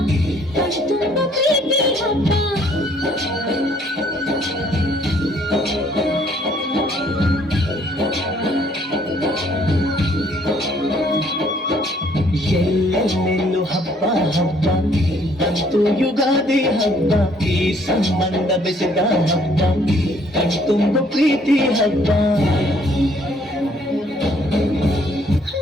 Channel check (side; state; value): both; normal; correlation 0.63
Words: ಕಣ್ತುಂಬ ಪ್ರೀತಿ ಹಬ್ಬ. ಎಲ್ಲೆಲ್ಲೆಲ್ಲೂ ಹಬ್ಬ ಹಬ್ಬ ಬಂತು ಯುಗಾದಿ ಹಬ್ಬ, ಈ ಸಂಬಂಧ ಬೆಸೆದ ಹಬ್ಬ, ಕಣ್ತುಂಬ ಪ್ರೀತಿ ಹಬ್ಬ.